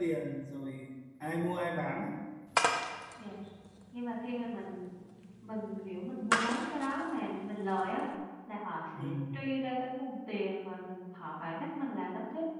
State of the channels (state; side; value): identical; both; correlation 1.00